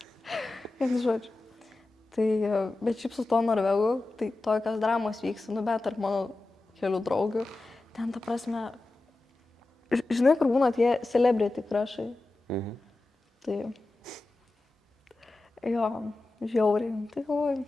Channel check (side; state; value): right; quieter; 3.0 dB